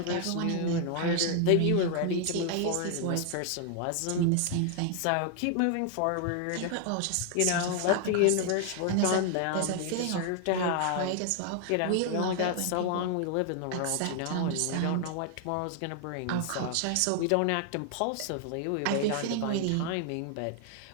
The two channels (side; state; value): both; different; correlation 0.00